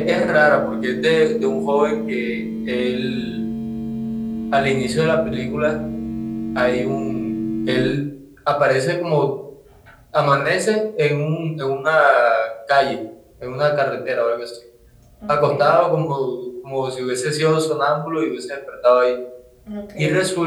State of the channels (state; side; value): identical; both; correlation 1.00